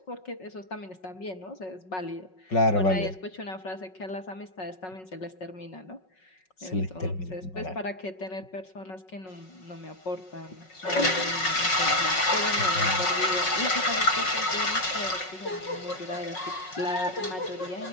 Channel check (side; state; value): right; late; 5.4 ms